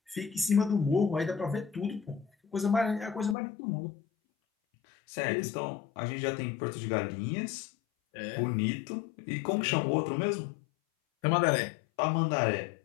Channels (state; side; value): drops out; right; at 3.4 s